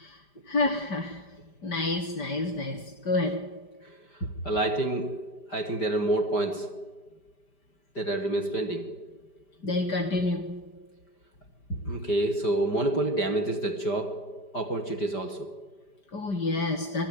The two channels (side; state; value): right; late; 5.1 ms